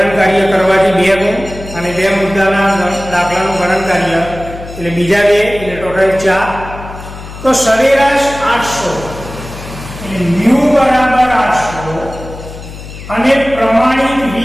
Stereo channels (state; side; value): noise; left; hum, 13 dB below the sound